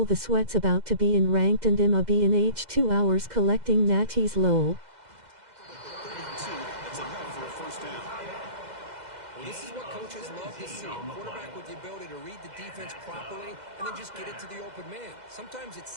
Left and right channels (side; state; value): left; late; 2.0 ms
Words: the sweats about to be in ranked and I'ma be in H2 hours collecting natties lol. That's enough for a first down. Well, this is what coaches love to see. A quarterback with the ability to read the defense properly and then just get it to the open man. Sometimes it